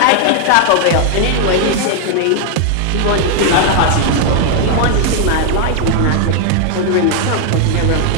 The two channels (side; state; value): both; different; correlation 0.00